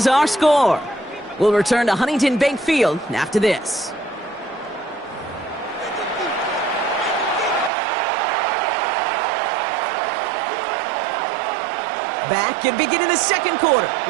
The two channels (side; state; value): left; drops out; at 7.7 s